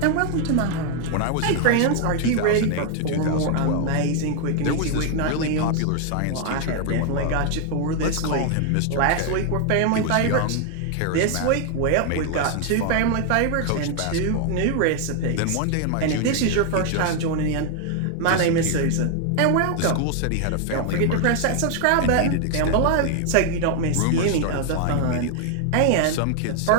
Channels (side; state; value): both; different; correlation 0.00